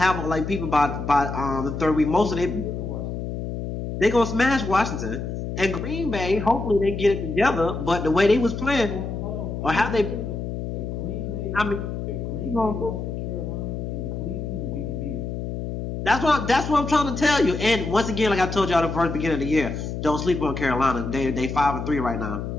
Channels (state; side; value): noise; left; hum, 5 dB below the sound